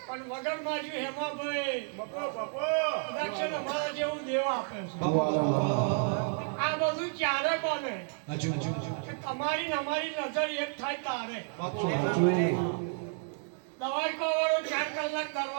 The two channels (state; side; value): silent; left; 57 dB below the other